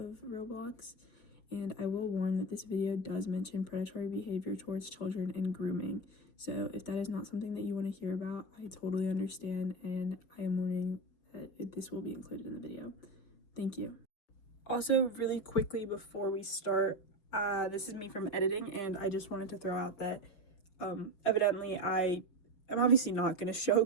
Roblox. And I will warn that this video does mention predatory behavior towards children and grooming. So if that is not something that you want to hear about, I totally understand, and I am warning that this will be included in the video. Thank you. Also, really quickly before we start, this is me from editing, and I just wanted to throw out that evidently I am obviously not going to show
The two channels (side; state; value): right; late; 5.1 ms